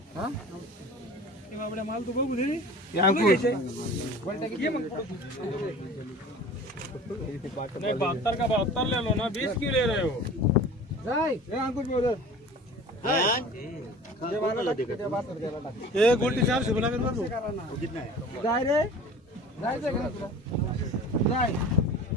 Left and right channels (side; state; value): both; normal; correlation 0.42